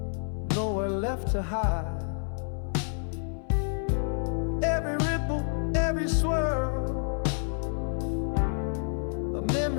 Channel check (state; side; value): silent; right; 59 dB below the other